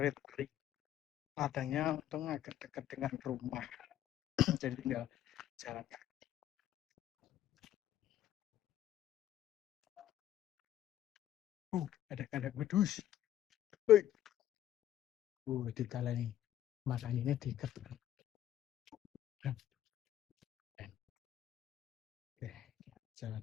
pari. Ladangnya untung agak dekat dengan rumah, jadi tinggal jalan kaki. Ada kandang wedus. Ditalani. Makanya diikat. Oke, jalan.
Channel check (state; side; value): quieter; right; 11.9 dB